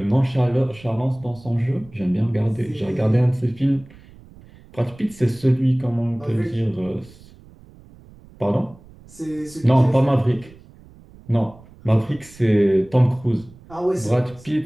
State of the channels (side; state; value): right; noise; rumble, 23 dB below the sound